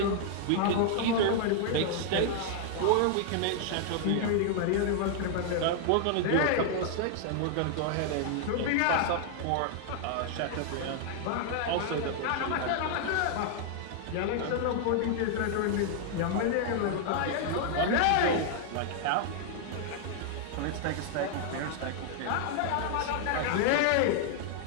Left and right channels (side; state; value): both; different; correlation 0.00